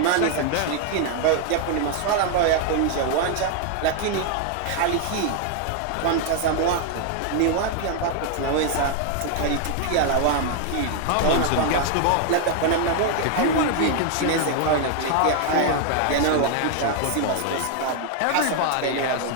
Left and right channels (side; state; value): both; different; correlation 0.00